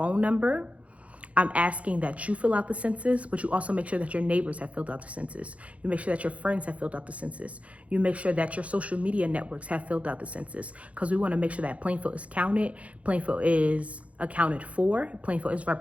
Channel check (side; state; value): left; late; 0.064 ms